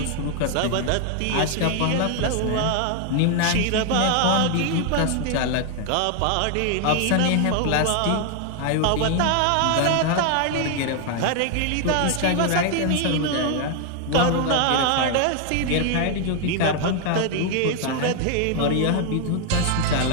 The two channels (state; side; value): different; both; correlation 0.00